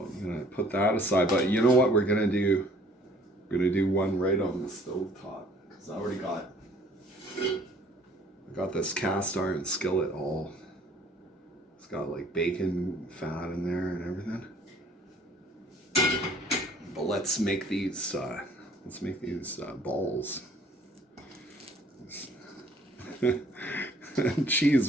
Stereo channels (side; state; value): both; normal; correlation 0.56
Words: going to put that aside. But you know what we're going to do? We're going to do one right on the stove top. Because I already got this cast iron skillet all. It's got like bacon fat in there and everything. But let's make these balls. Cheese